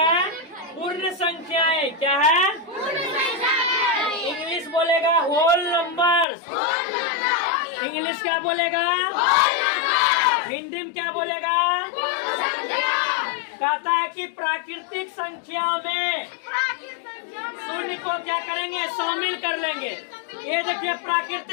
पूर्ण संख्याएं। क्या है? इंग्लिश बोलेगा होल नंबर्स। इंग्लिश क्या बोलेगा? हिंदी में क्या बोलेगा? कहता है कि प्राकृतिक संख्या में शून्य को क्या करेंगे? शामिल कर लेंगे। ये देखिए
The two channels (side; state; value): right; drops out; at 6.2 s